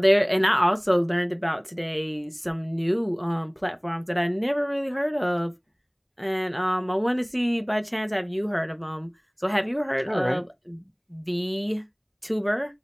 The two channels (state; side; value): identical; both; correlation 1.00